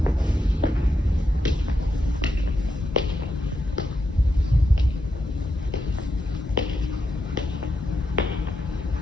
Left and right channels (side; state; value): both; normal; correlation 0.83